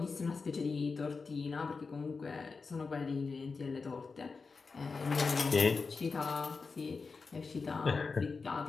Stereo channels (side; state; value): right; quieter; 4.6 dB